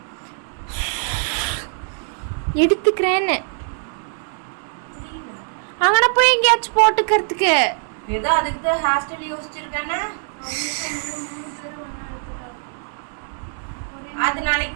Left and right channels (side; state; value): left; silent; 64 dB below the other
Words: எடுத்துக்கிறேன்னு அங்கன போய் எங்கேயாச்சும் போட்டுக்கிறதுக்கு ஏதோ அதுக்கு தான் ஹேர் ஸ்டைல் யோசிச்சிருக்கேன்னா அது நாளைக்கு